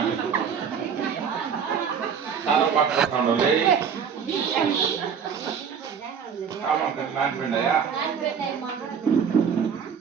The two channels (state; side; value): quieter; left; 6.9 dB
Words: చాలా పట్టుకుంటాడు లే నానిపోయిందయ్యా